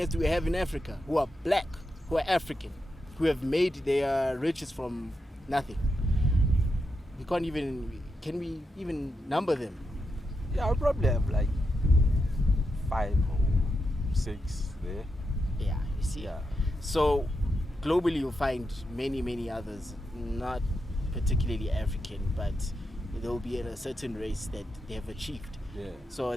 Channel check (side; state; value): both; normal; correlation 0.86